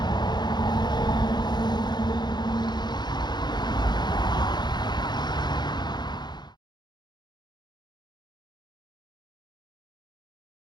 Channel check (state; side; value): late; right; 0.21 ms